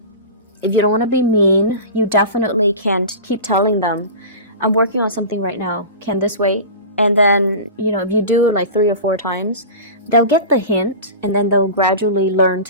you don't want to be mean, you definitely can keep telling them, I'm working on something right now. Can this wait? And then, if you do it like 3 or 4 times, they'll get the hint, and then they'll gradually learn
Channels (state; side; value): inverted; both; correlation -0.31